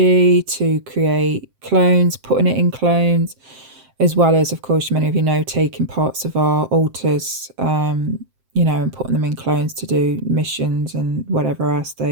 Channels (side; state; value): left; late; 7.6 ms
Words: to create clones, putting it in clones, as well as, of course, many of you know, taking parts of our altars, you know, and putting them in clones to do missions and whatever else